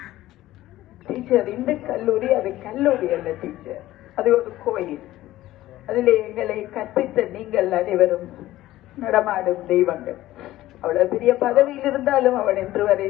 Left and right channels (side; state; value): right; quieter; 15.5 dB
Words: டீச்சர் இந்த கல்லூரி அது கல்லூரி அல்ல டீச்சர், அது ஒரு கோயில். அதிலே எங்களை கற்பித்த நீங்கள் அனைவரும் நடமாடும் தெய்வங்கள். அவ்வளவு பெரிய பதவியில் இருந்தாலும் அவன் என்று வரை